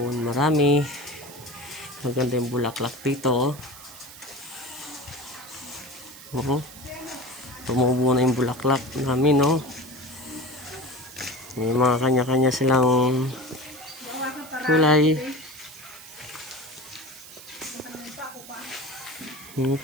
marami. Maganda yung bulaklak dito. Tumubo na yung bulaklak namin, no? May mga kanya-kanya silang kulay.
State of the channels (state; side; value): noise; right; hiss, 17 dB below the sound